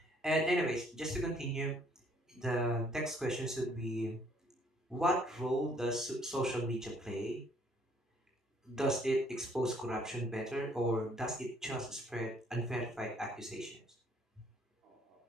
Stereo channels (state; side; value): normal; both; correlation 0.63